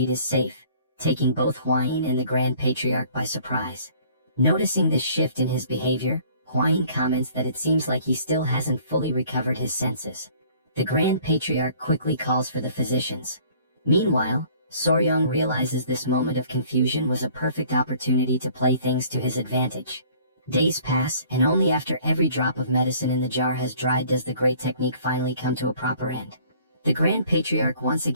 is safe, taking both Hwayin and the Grand Patriarch by surprise. Noticing this shift in his behavior, Hwayin comments that it seems like he still hasn't fully recovered his senses. The Grand Patriarch quickly calls for the physicians. Meanwhile, Soryang realizes this moment of confusion was a perfect opportunity to play things to his advantage. Days pass, and only after every drop of medicine in the jar has dried does the great technique finally come to a proper end. The Grand Patriarch once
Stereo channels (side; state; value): both; inverted; correlation -0.54